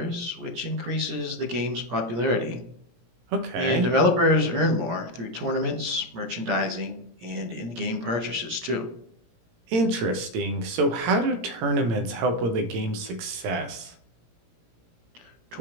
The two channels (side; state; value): left; late; 17 ms